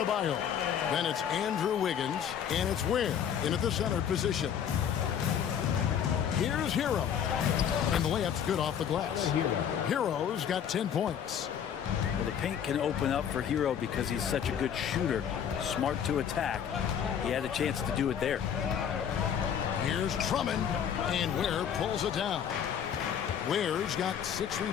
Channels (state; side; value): quieter; right; 8.6 dB